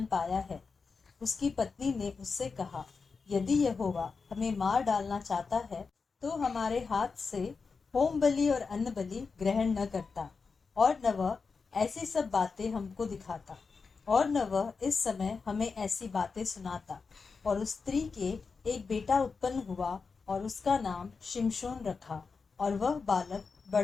पाया है। उसकी पत्नी ने उससे कहा, यदि यहोवा हमें मार डालना चाहता है तो हमारे हाथ से होम बलि और अन्न बलि ग्रहण न करता, और न वह ऐसी सब बातें हमको दिखाता। और न वह इस समय हमें ऐसी बातें सुनाता। और उस स्त्री के एक बेटा उत्पन्न हुआ और उसका नाम शिमशोन रखा। और वह बालक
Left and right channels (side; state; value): right; quieter; 4.8 dB